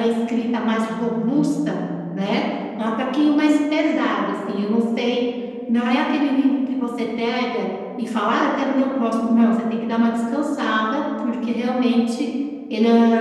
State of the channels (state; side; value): identical; both; correlation 1.00